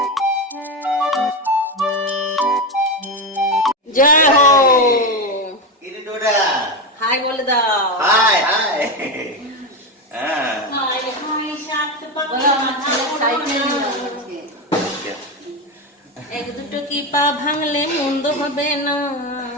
জয় হো, হাই বলে দাও। হাই হাই হ্যাঁ হাই হাই সাত বলো, আমার ছেলে সাইকেল নিল আজকে। এক দুটো কি পা ভাঙলে মন্দ হবে না।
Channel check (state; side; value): normal; both; correlation 0.14